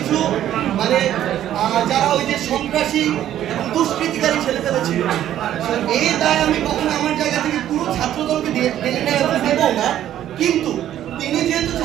মানে যারা ওই যে সন্ত্রাসী এবং দুষ্কৃতিকারী ছেলেপেলে ছিল। এই দায় আমি কখনো আমার জায়গা থেকে পুরো ছাত্র দলকে দেব না, কিন্তু তিনি যেহেতু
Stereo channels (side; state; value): left; quieter; 11.7 dB